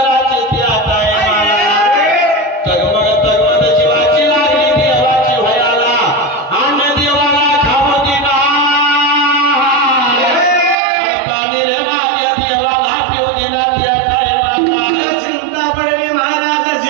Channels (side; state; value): left; drops out; at 10.8 s